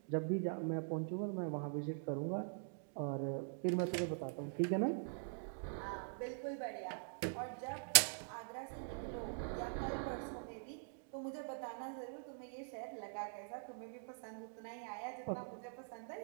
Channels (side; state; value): left; silent; digital silence